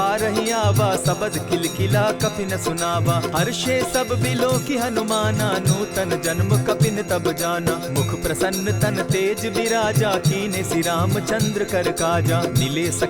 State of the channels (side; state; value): both; identical; correlation 1.00